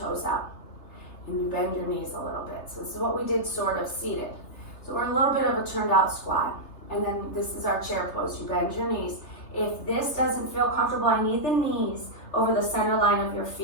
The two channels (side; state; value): right; late; 3.3 ms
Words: out. And you bend your knees a little bit. So this is what we did sort of seated. So we're a little bit of a turned out squat. And then this is our chair pose. You bend your knees. If this doesn't feel comfortable, I need the knees over the center line of your